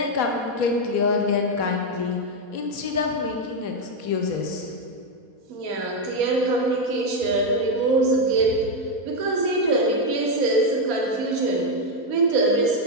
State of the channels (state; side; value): late; left; 4.2 ms